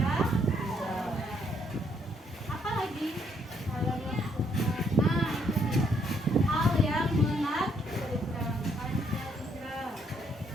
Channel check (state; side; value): normal; both; correlation 0.71